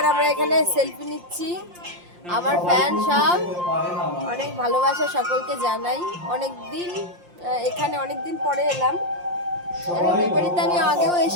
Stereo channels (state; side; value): late; left; 5.7 ms